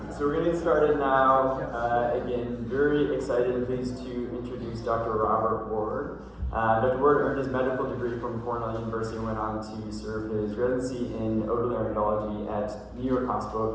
So we're going to get started now. Again, very excited and pleased to introduce Dr. Robert Ward. Dr. Ward earned his medical degree from Cornell University and went on to serve his residency in otolaryngology at New York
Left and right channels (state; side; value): identical; both; correlation 1.00